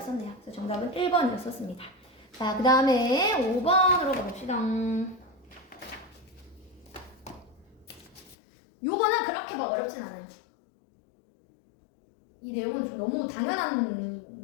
그래서 정답은 1번이었었습니다. 자, 그 다음에 5번으로 가봅시다. 요거는 그렇게 막 어렵진 않아요. 이 내용은 좀 너무 당연한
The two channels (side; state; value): right; drops out; at 8.3 s